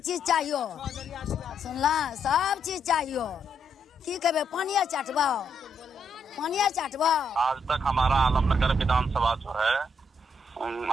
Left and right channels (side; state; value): both; normal; correlation 0.76